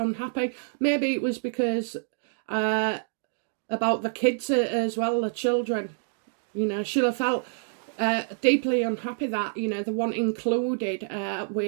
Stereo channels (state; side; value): silent; left; digital silence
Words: Maybe it was because about the kids as well, the children. You know, she'll have felt deeply unhappy that, you know, the one included